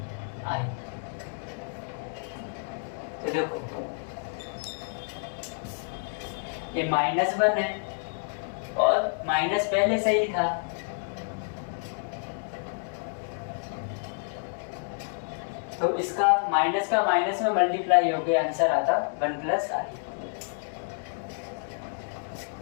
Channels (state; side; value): silent; right; digital silence